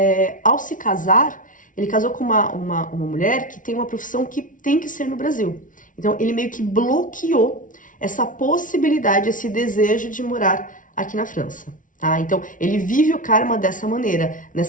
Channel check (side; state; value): right; late; 0.38 ms